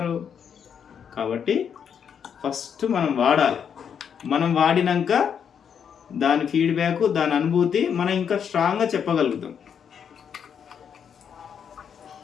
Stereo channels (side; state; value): right; quieter; 7.7 dB